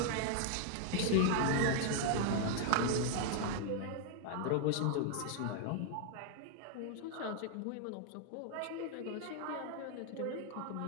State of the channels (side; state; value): both; different; correlation 0.00